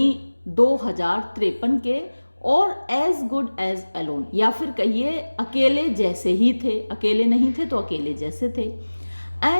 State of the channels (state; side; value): inverted; both; correlation -1.00